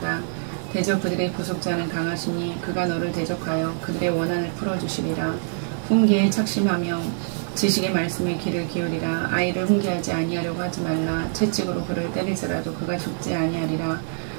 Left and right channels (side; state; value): left; silent; digital silence